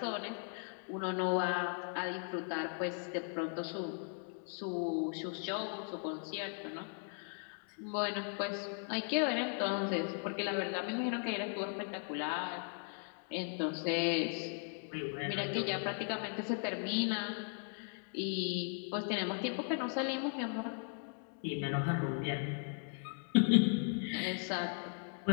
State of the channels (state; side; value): silent; right; 53 dB below the other